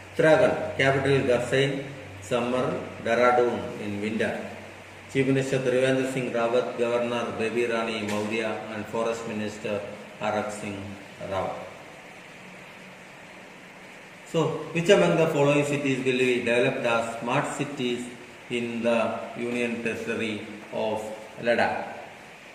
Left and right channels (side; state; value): both; identical; correlation 1.00